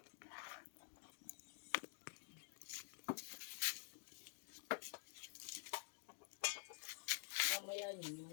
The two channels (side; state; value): right; silent; digital silence